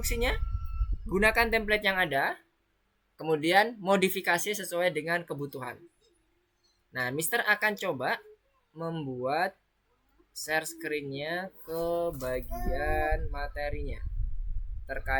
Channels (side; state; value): both; identical; correlation 1.00